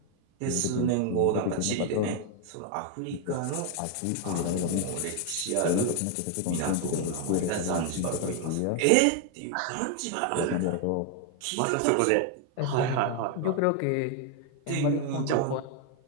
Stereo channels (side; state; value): both; different; correlation 0.01